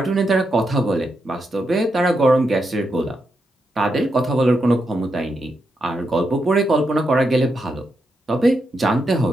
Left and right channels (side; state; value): both; normal; correlation 0.84